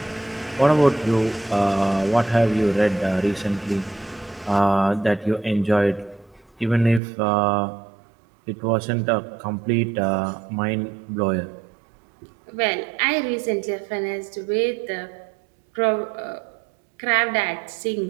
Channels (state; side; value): drops out; left; at 7.0 s